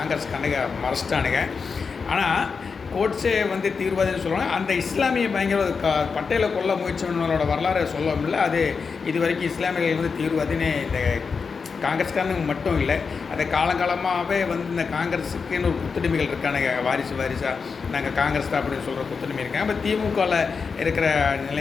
கணக்க மறைச்சிட்டானுங்க. ஆனால் கோட்ஸே தீவிரவாதின்னு சொல்லுவாங்க. அந்த இஸ்லாமிய பயங்கர பட்டேலை கொல்ல முயற்சி பண்ணவங்களோட வரலாறு சொல்ல முடியல. அது இது வரைக்கும் இஸ்லாமியர்கள் தீவிரவாதின்னு இந்த காங்கிரஸ்காரனுங்க மட்டும் இல்லை, அதை காலங்காலமாகவே இந்த காங்கிரஸுக்குன்னு ஒரு குத்துடிமைகள் இருக்கானுங்க. வாரிசாக நாங்கள் காங்கிரஸ் தான் அப்படின்னு சொல்கிற குத்துடிமை இருக்காங்க. இப்போ திமுகவில் இருக்கிற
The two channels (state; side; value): quieter; right; 5.3 dB